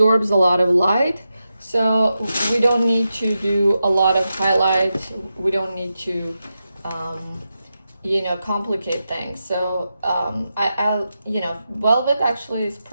a lot of light. So we don't need to do a lot of highlights. We don't need to, complicate things. So velvet actually is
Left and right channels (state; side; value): inverted; both; correlation -0.89